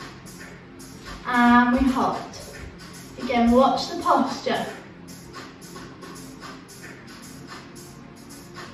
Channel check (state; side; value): identical; both; correlation 1.00